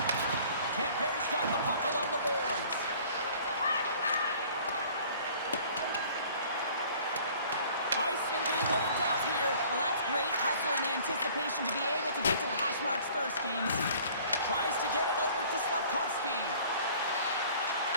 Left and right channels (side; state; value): both; inverted; correlation -0.51